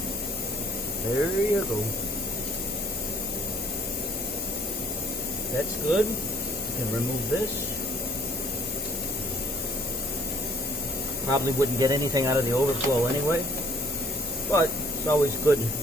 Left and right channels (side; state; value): both; normal; correlation 0.58